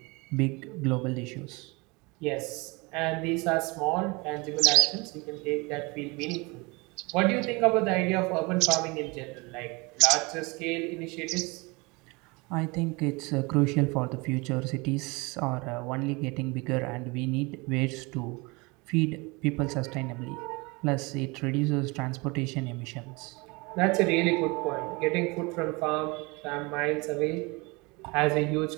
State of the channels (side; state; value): left; quieter; 26.4 dB